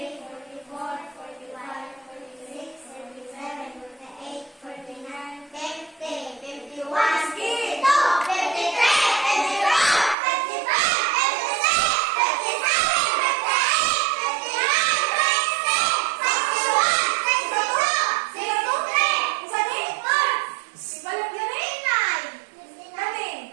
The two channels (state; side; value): drops out; left; at 10.2 s